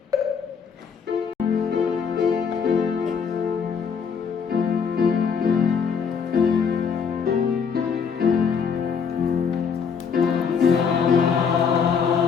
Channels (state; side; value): quieter; right; 6.4 dB